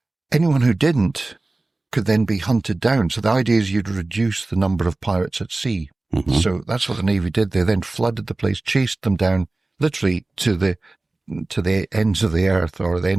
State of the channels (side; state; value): left; quieter; 3.1 dB